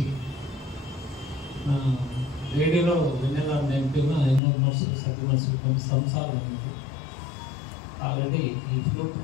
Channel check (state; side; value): drops out; right; at 4.4 s